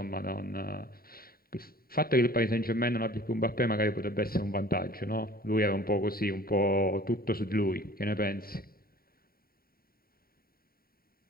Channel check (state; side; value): late; right; 0.43 ms